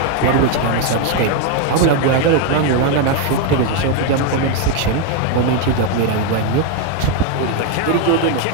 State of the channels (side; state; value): both; different; correlation 0.01